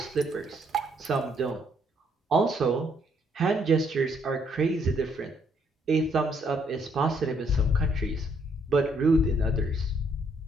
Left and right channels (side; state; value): both; normal; correlation 0.70